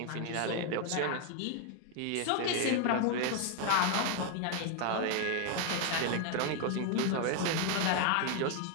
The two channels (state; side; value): different; both; correlation 0.01